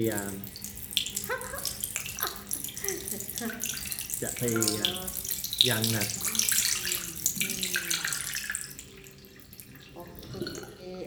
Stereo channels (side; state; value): both; identical; correlation 1.00